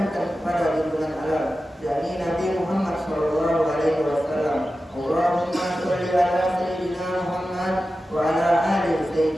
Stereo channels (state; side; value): normal; both; correlation 0.93